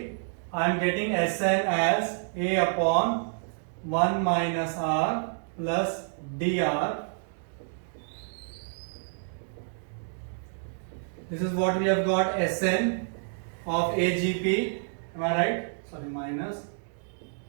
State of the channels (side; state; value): left; silent; digital silence